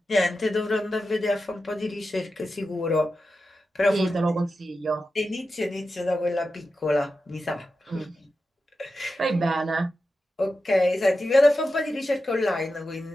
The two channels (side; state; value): both; normal; correlation 0.91